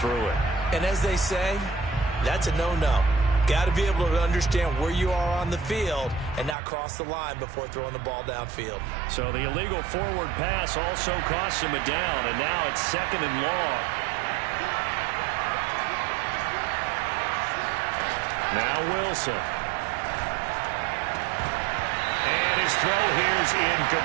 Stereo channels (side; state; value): left; drops out; at 6.6 s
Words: it. And as they say, that's a no-no. Got to be able to understand where you are on the field and not cross the line before throwing the ball downfield. So the illegal forward pass also cost him a down, and now it's 2nd and long. Now Wilson. And his throw here is